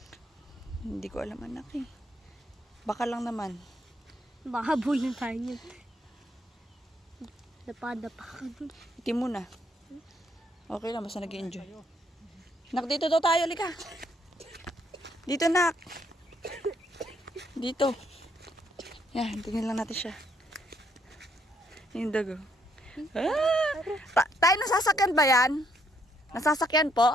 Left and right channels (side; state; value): both; normal; correlation 0.71